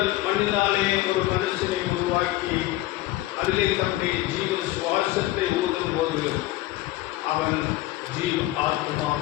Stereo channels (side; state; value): right; quieter; 16.8 dB